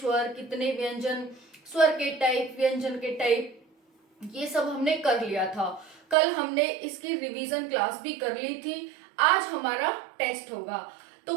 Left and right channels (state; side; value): drops out; left; at 6.2 s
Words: कितने व्यंजन, स्वर के टाइप, व्यंजन के टाइप, ये सब हमने कर लिया था। कल हमने इसकी रिवीजन क्लास भी कर ली थी। आज हमारा टेस्ट होगा, तो